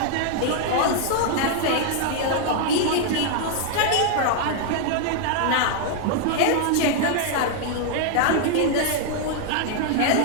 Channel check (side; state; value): both; different; correlation 0.00